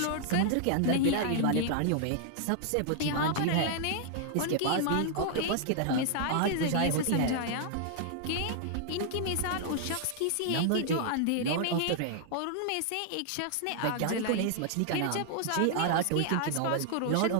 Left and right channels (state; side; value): different; both; correlation 0.00